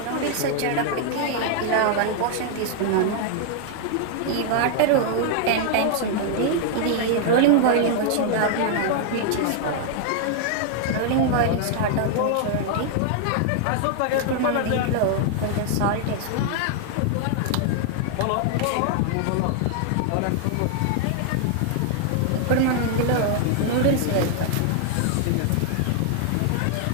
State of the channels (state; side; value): different; both; correlation 0.00